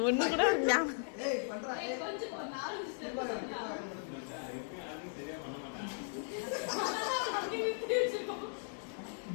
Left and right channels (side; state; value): right; silent; digital silence